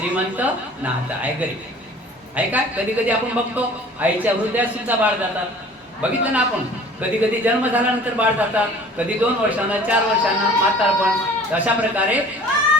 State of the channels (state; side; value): normal; both; correlation 0.48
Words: नात आहे गरीब. आहे का? कधी कधी आपण बघतो आईच्या हृदयात सुद्धा बाळ जातात. बघितलं ना आपण. कधी कधी जन्म झाल्यानंतर बाळ जातात, कधी 2 वर्षांना 4 वर्षांना म्हातारपण. अशा प्रकारे